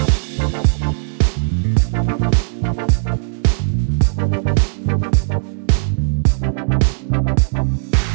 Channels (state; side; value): silent; left; digital silence